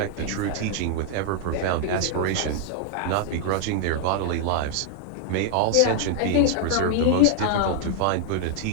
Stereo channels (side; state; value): both; different; correlation -0.01